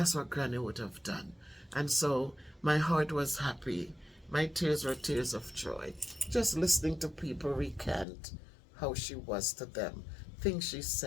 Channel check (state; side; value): drops out; right; at 8.1 s